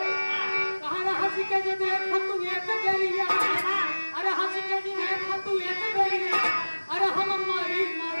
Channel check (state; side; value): inverted; both; correlation -1.00